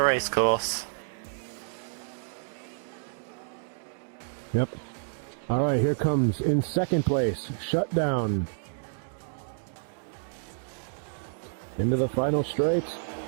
Racecourse. Yep. Alright, here comes in second place, Shutdown. Into the final straight.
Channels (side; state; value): left; silent; digital silence